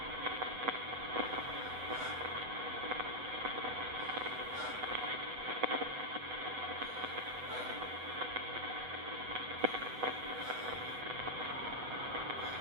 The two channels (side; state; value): left; late; 8.0 ms